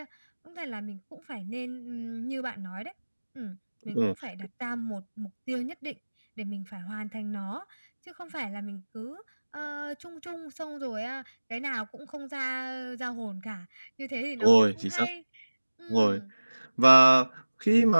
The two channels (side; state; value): both; inverted; correlation -1.00